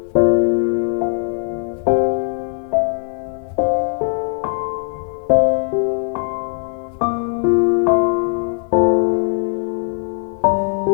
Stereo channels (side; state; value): right; silent; 66 dB below the other